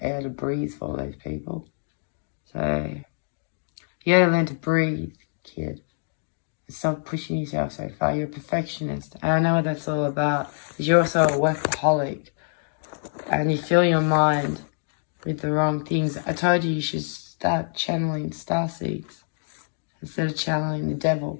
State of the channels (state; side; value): silent; right; digital silence